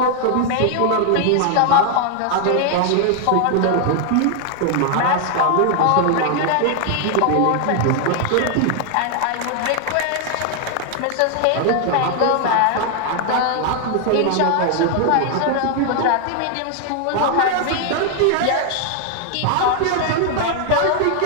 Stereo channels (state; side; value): different; both; correlation 0.00